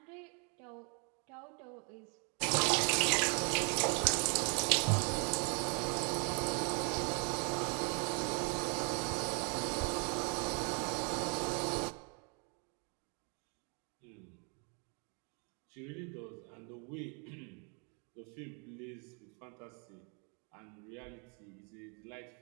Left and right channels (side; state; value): left; quieter; 37.1 dB